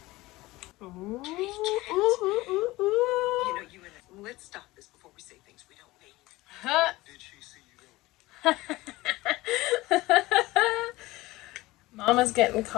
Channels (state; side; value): quieter; right; 19.4 dB